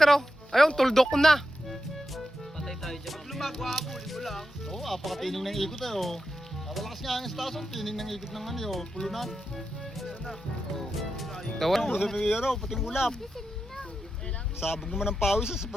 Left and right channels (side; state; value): both; normal; correlation 0.88